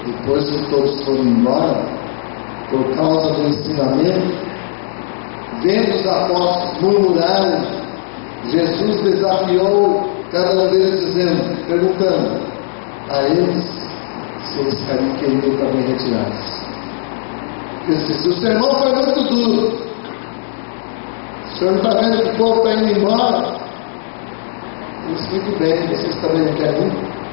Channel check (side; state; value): right; silent; 69 dB below the other